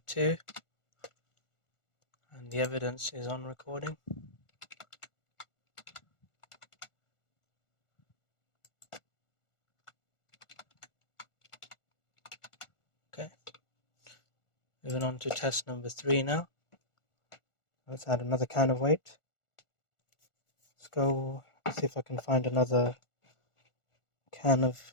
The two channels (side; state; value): right; late; 1.4 ms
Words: 2, and the evidence is on recording. Okay, moving on to test number 3 now. Let's add another can of weight. Let's see if I can find another can of